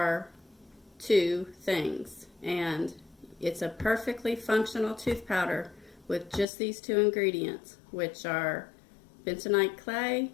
two things, and it's a perfectly functional tooth powder with just these two ingredients, which are bentonite clay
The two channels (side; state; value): right; drops out; at 6.5 s